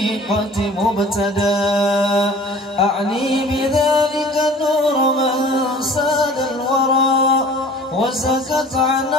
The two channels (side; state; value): both; normal; correlation 0.46